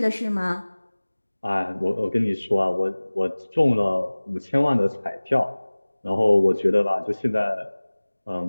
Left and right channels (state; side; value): inverted; both; correlation -1.00